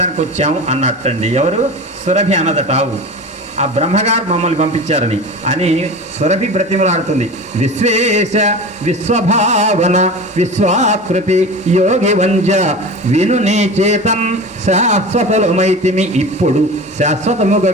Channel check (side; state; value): both; normal; correlation 0.32